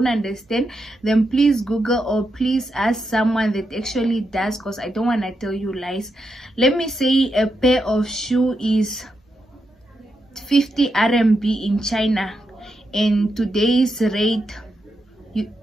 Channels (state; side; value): normal; both; correlation 0.84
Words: understand, then please Google or please ask someone that actually does, because I don't want to tell you lies. Let me say a pair of shoe is 50 RMB in China, and today's rate